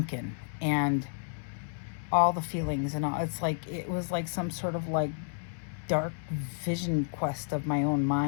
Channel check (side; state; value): right; silent; 57 dB below the other